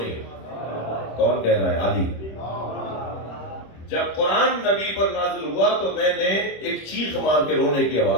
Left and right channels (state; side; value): late; right; 26 ms